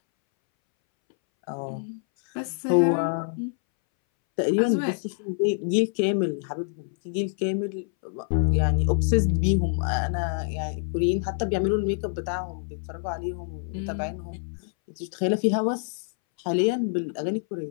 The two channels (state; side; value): silent; right; 61 dB below the other